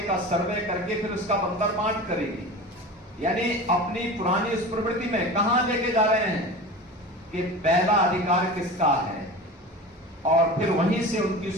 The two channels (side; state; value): both; normal; correlation 0.33